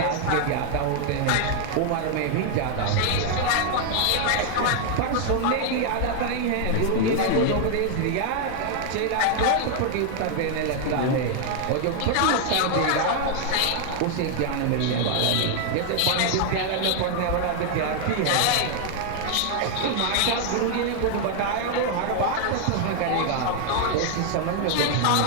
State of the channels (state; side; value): different; both; correlation 0.00